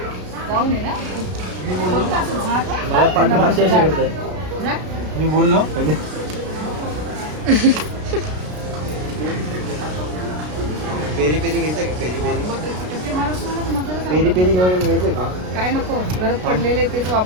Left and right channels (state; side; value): late; left; 33 ms